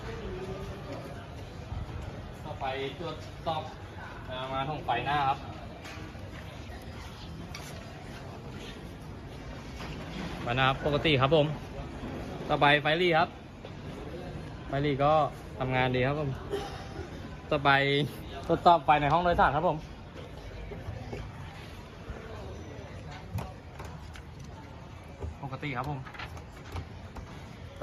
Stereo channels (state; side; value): identical; both; correlation 1.00